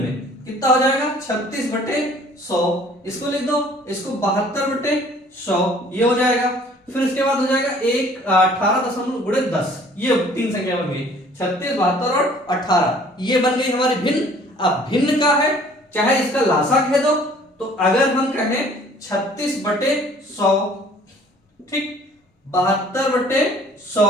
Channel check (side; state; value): both; normal; correlation 0.54